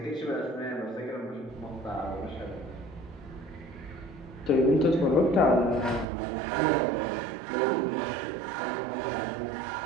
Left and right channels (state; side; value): drops out; left; at 6.1 s